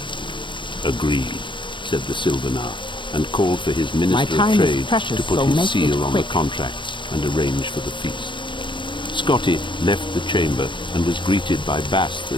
"Agreed," said the Sylvanar, and called for his Minister of time is Trade precious, to put so his make it seal on the quick. contracts and arrange for the feast. Scotty left the chamber and was greeted by Bast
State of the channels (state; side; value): late; right; 0.23 ms